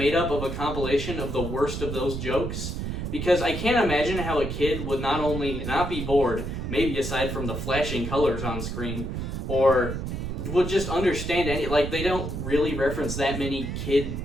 up of a compilation of the worst of those jokes, because I can't imagine how a kid would not only not be bored, maybe aside from the flashing colors on screen, or would just understand they don't really reference that many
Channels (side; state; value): right; noise; rumble, 4 dB below the sound